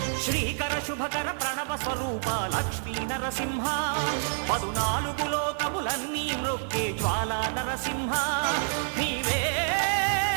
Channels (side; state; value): left; silent; digital silence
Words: శ్రీకర శుభకర ప్రణవ స్వరూప లక్ష్మీ నరసింహ 14 లోకములన్నీ మ్రొక్కే జ్వాలా నరసింహ నీవే